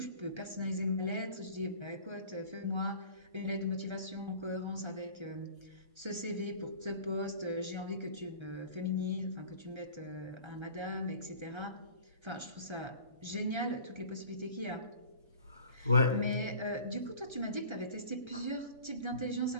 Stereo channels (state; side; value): late; left; 1.3 ms